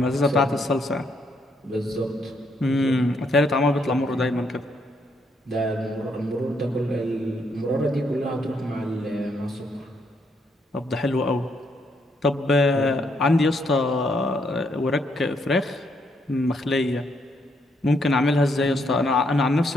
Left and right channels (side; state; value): both; normal; correlation 0.74